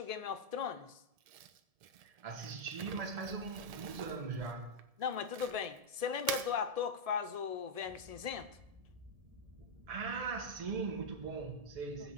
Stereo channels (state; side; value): late; left; 1.7 ms